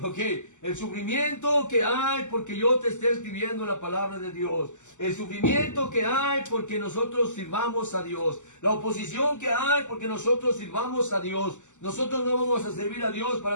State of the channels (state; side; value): late; right; 0.84 ms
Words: Ok, el sufrimiento que hay porque yo te esté escribiendo la palabra de Dios, el sufrimiento que hay porque nosotros sirvamos a Dios, la oposición que hay porque nosotros sirvamos a Dios. Nosotros no vamos a servir a Dios